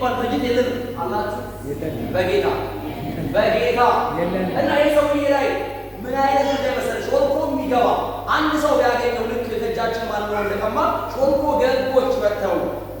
ድርጅት የለንም። አላችሁ በጌታ እና የሰውዬ ላይ ምን አይነት እንደመሰለ ሾልኮ የሚገባ አንድ ሰው ቢያገኘው ልክ ከእጃችን ማለት ነው እንደቀማ ሾልኮ ገቦች መጥተው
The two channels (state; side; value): identical; both; correlation 1.00